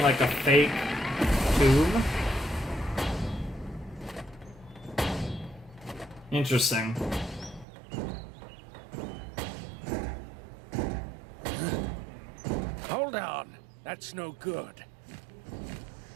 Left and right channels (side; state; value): left; drops out; at 7.7 s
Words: like a fake tomb? Interesting. Hold on. That's no good.